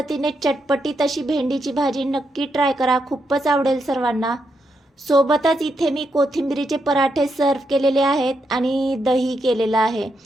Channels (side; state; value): both; normal; correlation 0.82